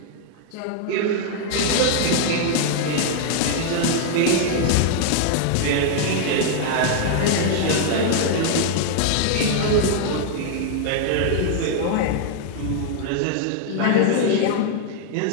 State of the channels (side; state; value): both; different; correlation 0.00